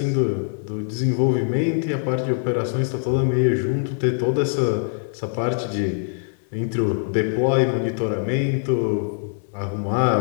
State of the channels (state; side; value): silent; right; digital silence